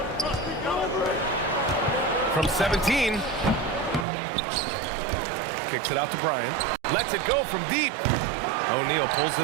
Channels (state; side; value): drops out; left; at 4.0 s